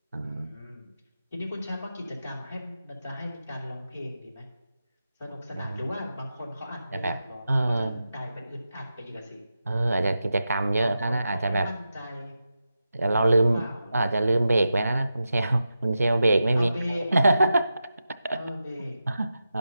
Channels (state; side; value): inverted; both; correlation -0.90